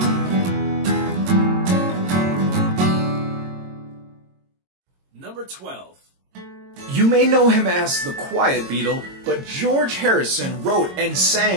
Number 12. You may know him as the Quiet Beatle, but George Harrison wrote and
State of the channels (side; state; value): left; late; 22 ms